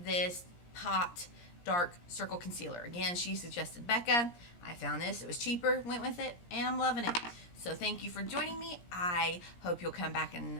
this Pot Dark Circle Concealer. Again, she suggested Becca. I found this. It was cheaper. Went with it. And I'm loving it. So thank you for joining me. I hope you'll come back and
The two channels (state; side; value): late; right; 17 ms